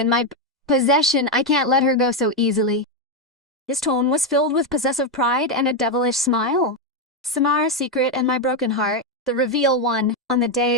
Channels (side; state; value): both; normal; correlation 0.06